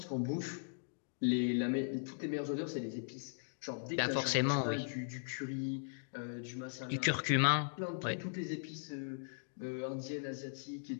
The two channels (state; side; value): silent; right; digital silence